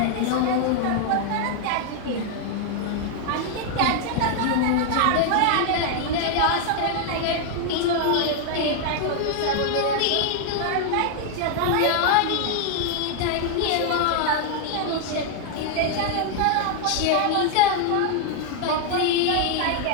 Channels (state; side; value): different; both; correlation 0.00